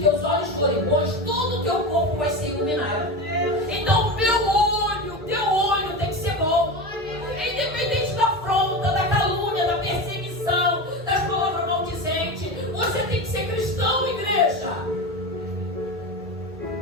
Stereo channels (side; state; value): both; normal; correlation 0.23